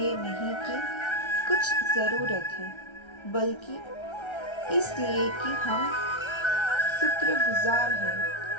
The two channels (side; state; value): right; late; 1.3 ms